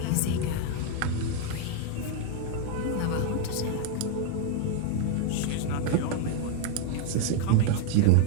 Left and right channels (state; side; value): different; both; correlation 0.01